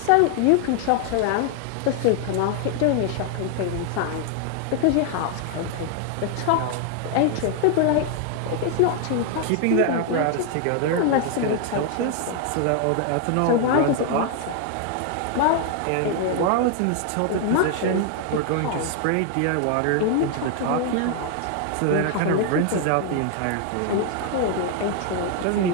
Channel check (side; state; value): both; different; correlation 0.00